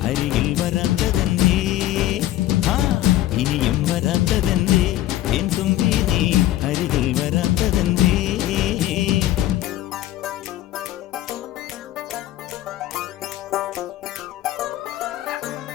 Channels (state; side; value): quieter; right; 14.3 dB